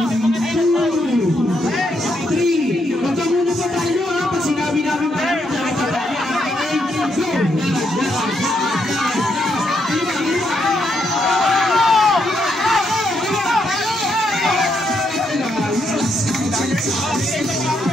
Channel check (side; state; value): both; normal; correlation 0.77